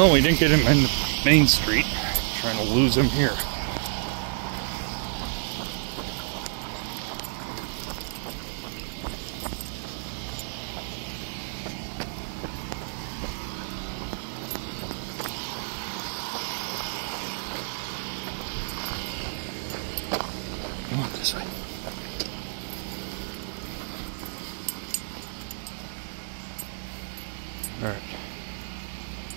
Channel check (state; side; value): silent; left; digital silence